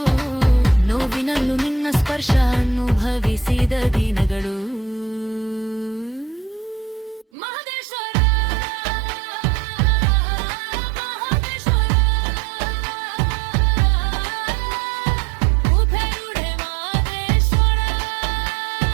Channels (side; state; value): left; drops out; at 7.2 s